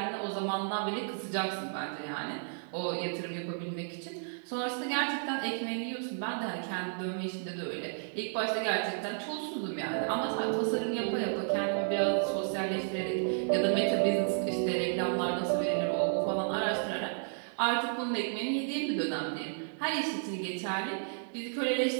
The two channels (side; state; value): left; silent; digital silence